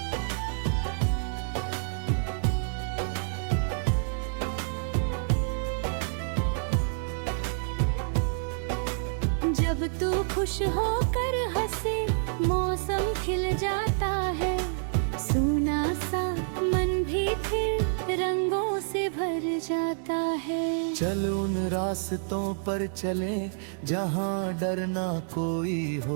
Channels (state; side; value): silent; left; 59 dB below the other